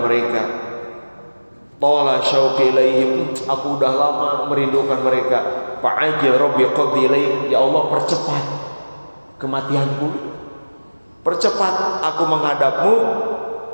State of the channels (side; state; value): both; inverted; correlation -1.00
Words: mereka. Tala syauqi ilaihim, aku udah lama merindukan mereka. Fa'ajil rabbi qaddi ilaihim, ya Allah percepat kematianku, percepat aku menghadapmu.